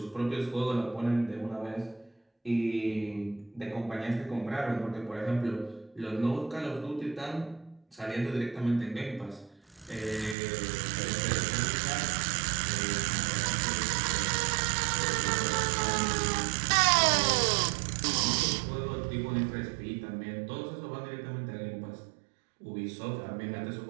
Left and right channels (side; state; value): left; drops out; at 10.4 s